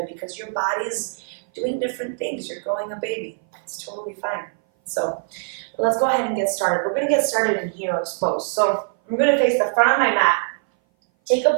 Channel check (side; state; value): left; silent; 58 dB below the other